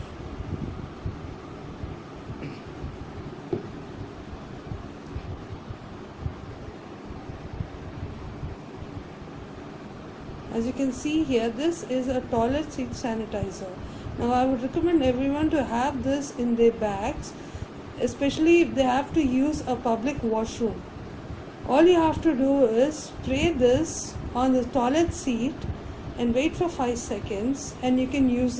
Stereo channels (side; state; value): both; identical; correlation 1.00